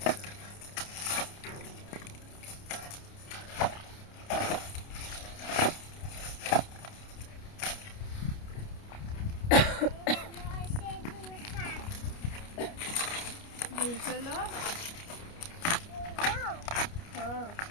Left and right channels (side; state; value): right; late; 29 ms